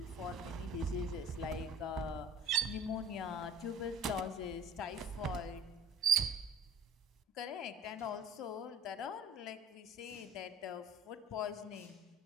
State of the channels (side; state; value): both; normal; correlation 0.45